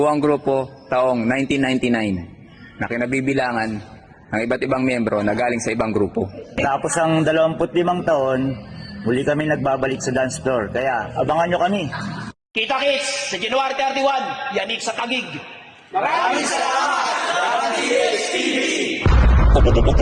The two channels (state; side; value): identical; both; correlation 1.00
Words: grupo taong 1999 na kinabibilangan ng iba't ibang miyembro na galing sa ibang grupo. Tapos ang 25 taon, muli kami nagbabalik sa dance floor. Kaya abangan nyo kami. Kita-kits sa January 31, yanig sa Tagig.